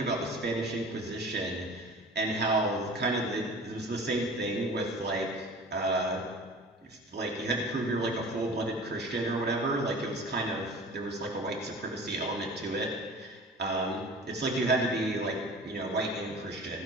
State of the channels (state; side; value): normal; both; correlation 0.41